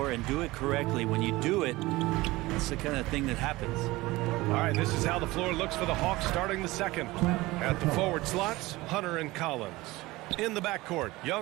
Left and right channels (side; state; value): left; quieter; 20.0 dB